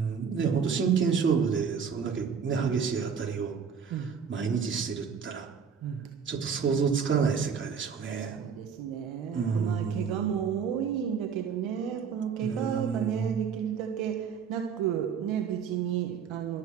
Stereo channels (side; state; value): left; quieter; 6.6 dB